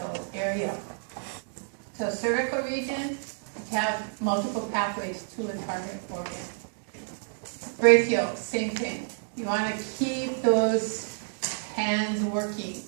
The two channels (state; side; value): silent; left; digital silence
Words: area. So cervical region, you have multiple pathways to a target organ. Brachial, same thing. You want to keep those hands working,